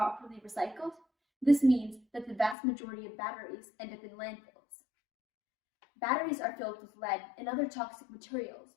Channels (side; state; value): right; drops out; at 2.6 s